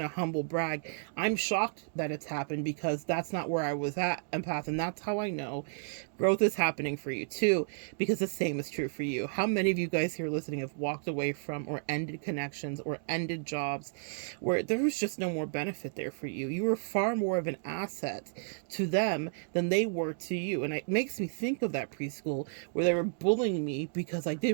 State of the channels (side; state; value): left; silent; digital silence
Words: a humble brag. I'm shocked that it's happened because that's not where I was at, empath, and that's how I know growth is happening for you too, because the same is true for you. How many of you guys here listening have walked away from or ended connections or ended jobs where there was just no more benefit there for you? You were far more of an asset to them than they were to you. And it makes me think of that preschool where they were bullying me because I